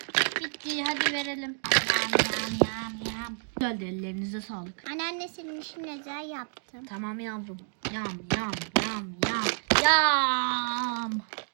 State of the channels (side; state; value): left; silent; 58 dB below the other